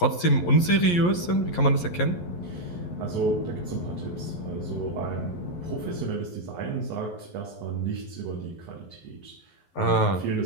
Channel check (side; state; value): right; late; 11 ms